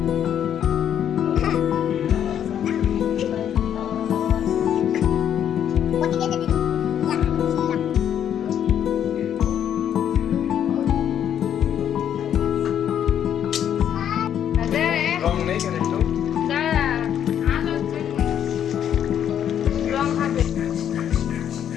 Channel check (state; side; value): quieter; right; 9.6 dB